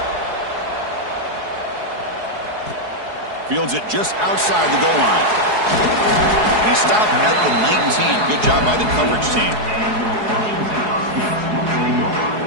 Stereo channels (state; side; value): late; left; 4.7 ms